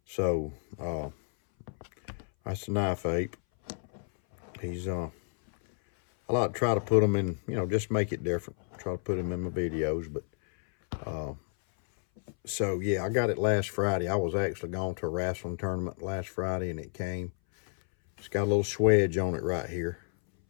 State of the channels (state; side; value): silent; right; 57 dB below the other